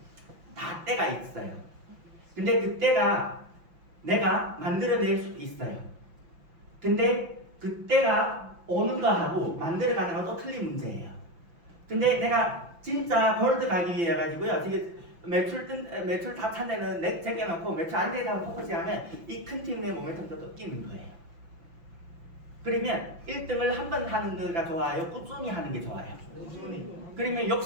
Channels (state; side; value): late; left; 5.9 ms